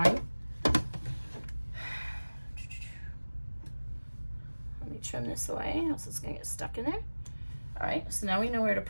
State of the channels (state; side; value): inverted; both; correlation -1.00